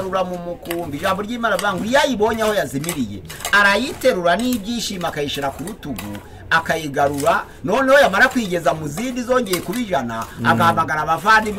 mu mukumbi. Ijambo ry'Imana avuga ngo yayibonye aho yazimiriye arayiterura n'ibyishimo akayishira ku rutugu akayigarura. Noneho yamara kwigeza mu zindi zongeye kuba 100 agahamagara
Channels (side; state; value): both; identical; correlation 1.00